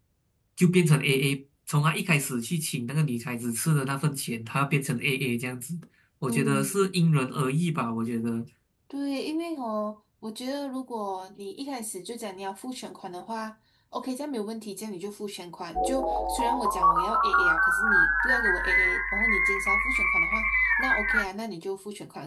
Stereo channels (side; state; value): both; identical; correlation 1.00